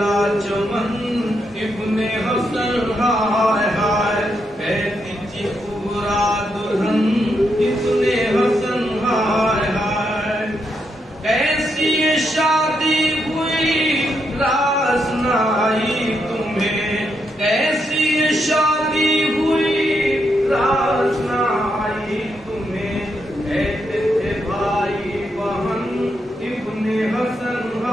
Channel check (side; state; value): both; normal; correlation 0.80